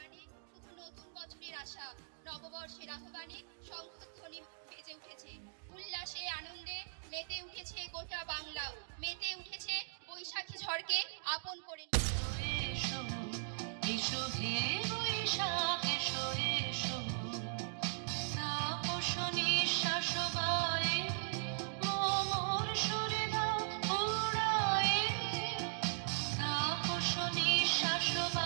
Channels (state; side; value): silent; left; digital silence